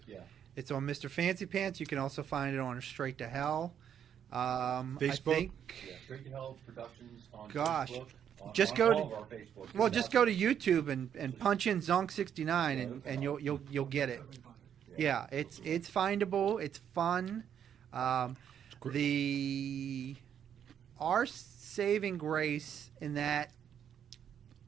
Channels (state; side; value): quieter; left; 8.9 dB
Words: Yeah. It's on Mr. Fancy Pants. You can also find it on Straight to Hell. Facebook? I think. Yeah. Straight to Hell Productions on Gosh. Facebook. Just on go all to- of our Facebook. Well, just go to YouTube and punch in Zonk 69 and you'll get it. Yeah, it's findable. It's fun. Our saving grace in that